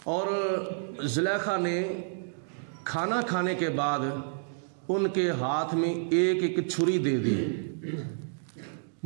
اور زلیخا نے کھانا کھانے کے بعد ان کے ہاتھ میں ایک ایک چھری دے دی۔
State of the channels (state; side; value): silent; left; digital silence